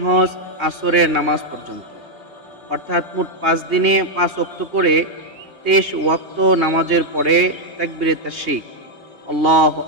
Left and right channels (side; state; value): left; late; 3.2 ms